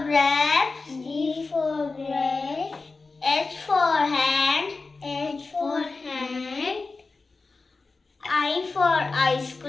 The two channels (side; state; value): right; quieter; 3.9 dB